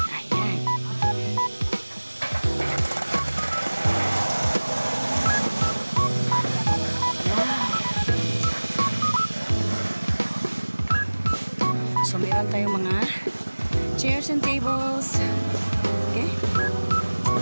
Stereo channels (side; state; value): both; inverted; correlation -1.00